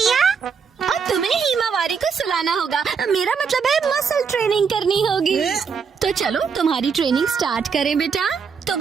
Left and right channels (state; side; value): quieter; left; 6.1 dB